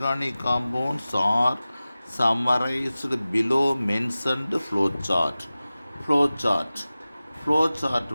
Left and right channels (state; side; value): inverted; both; correlation -0.97